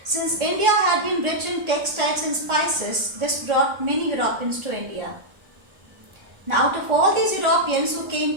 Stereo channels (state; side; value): late; left; 1.4 ms